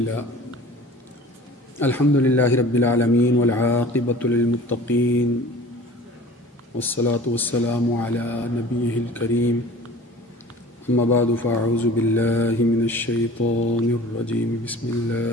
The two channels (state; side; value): normal; both; correlation 0.43